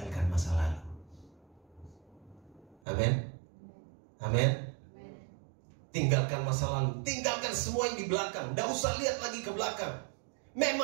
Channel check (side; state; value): left; drops out; at 2.8 s